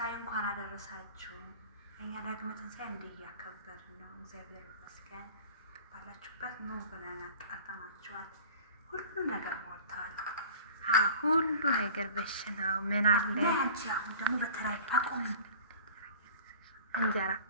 እንኳን አደረሳችሁ። እኛ ዳግመ ትንሣኤ እንዲህ እያከበርን ነው። እግዚአብሔር ይመስገን። ባላችሁበት ኑ ብለን አጣጣማችኋል። ሁሉ ነገር ሞልተዋል። ሁሉ ነገር በሽናው ምን አለ። አንቺ አሁን ደግሞ በተለይ ታቆም እንጀራ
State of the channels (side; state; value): both; inverted; correlation -0.42